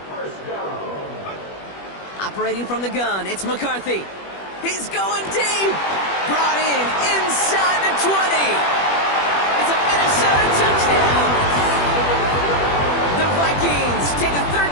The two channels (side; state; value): right; late; 21 ms